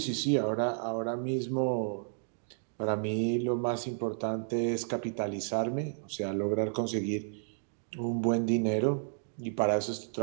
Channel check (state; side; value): silent; left; digital silence